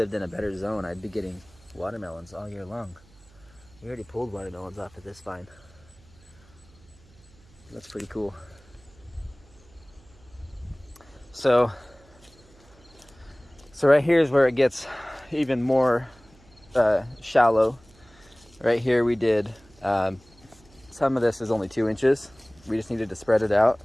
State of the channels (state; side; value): noise; right; hum, 27 dB below the sound